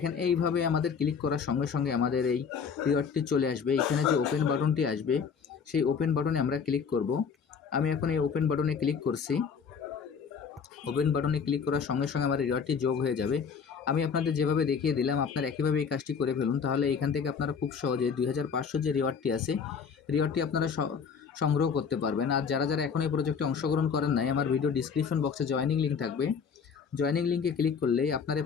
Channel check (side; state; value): right; quieter; 6.3 dB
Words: এইভাবে আমাদের ক্লিক করার সঙ্গে সঙ্গে আমাদের এই রিওয়ার্ডটি চলে আসবে। এখানে যে ওপেন বাটনটি আসবে সেই ওপেন বাটনে আমরা ক্লিক করব। আমি এখন এই ওপেন বাটনে ক্লিক করছি। ওপেন বাটনে ক্লিক করার সঙ্গে সঙ্গে আমার রিওয়ার্ডটি যোগ হয়ে যাবে। আমি আপনাদের যেভাবে দেখিয়ে দিলাম আপনারা একইভাবে এই কাজটি করে ফেলুন, তাহলে এখান থেকে আপনারা খুব সহজে 2500 যে রিওয়ার্ডটি আছে রিওয়ার্ডটি আপনারা সংগ্রহ করতে পারবেন। আর যারা যারা এখন এই প্রজেক্টে অংশগ্রহণ করেন নাই, আমার ভিডিও ডিসক্রিপশন বক্সে জয়েনিং লিঙ্ক থাকবে। জয়েনিং লিঙ্কে ক্লিক করলেই আপনারা এই